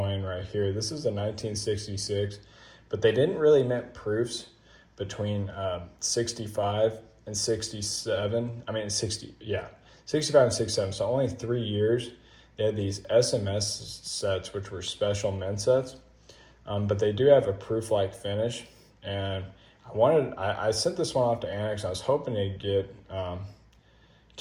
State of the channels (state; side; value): identical; both; correlation 1.00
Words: right here. This is a 1966, but they didn't really mint proofs between 65 and 67. I mean, 65 and 67. So only 3 years. They had these SMS sets, which were special mint sets. But they do have a proof-like finish, and I sent this one off to Annex. I was hoping to get